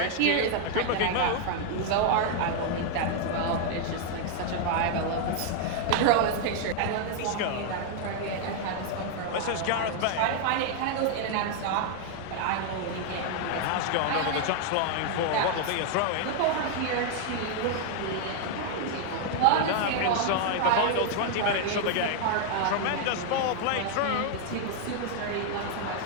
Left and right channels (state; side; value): different; both; correlation 0.00